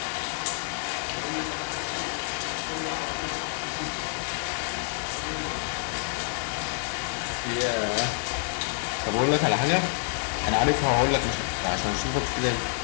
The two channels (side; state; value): right; silent; 59 dB below the other